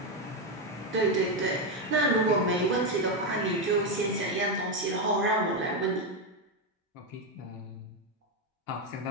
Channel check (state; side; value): normal; both; correlation 0.07